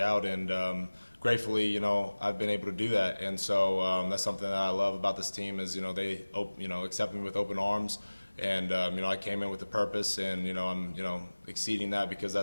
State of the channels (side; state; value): both; inverted; correlation -1.00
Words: And gratefully, I've been able to do that. And so that's something that I love about this team is, they, accept me with open arms. And I came in with a purpose, and I'm exceeding that because